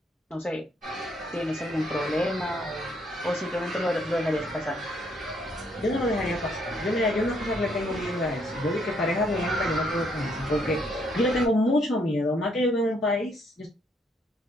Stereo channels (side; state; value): both; normal; correlation 0.70